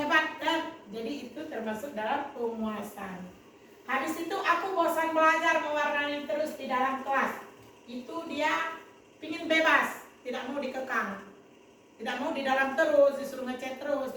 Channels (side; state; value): both; identical; correlation 1.00